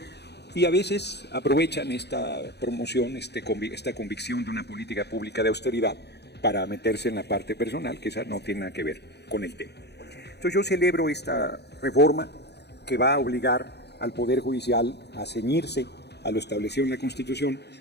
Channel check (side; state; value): right; late; 0.49 ms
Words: y a veces aprovechan esta promoción, esta convicción de una política pública de austeridad para meterse en la parte personal, que esa no tiene nada que ver con el tema. Entonces yo celebro esta reforma que va a obligar al Poder Judicial a ceñirse a lo establecido en la Constitución,